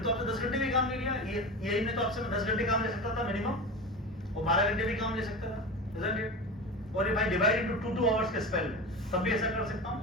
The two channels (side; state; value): both; normal; correlation 0.27